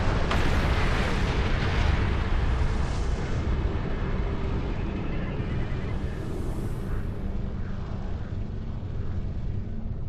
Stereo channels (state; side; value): identical; both; correlation 1.00